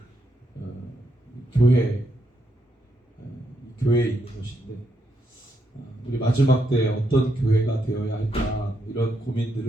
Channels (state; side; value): normal; both; correlation 0.79